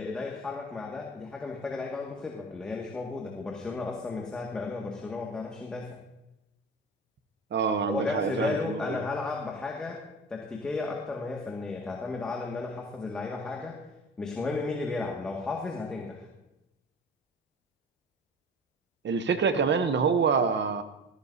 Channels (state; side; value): normal; both; correlation 0.35